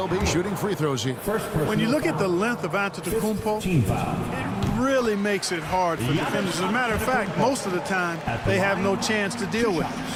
be shooting free throws here. When you look at the length of Antetokounmpo, it really makes it hard for defenders. As a matter of fact, most of the time, they have no chance to deal with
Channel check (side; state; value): both; identical; correlation 1.00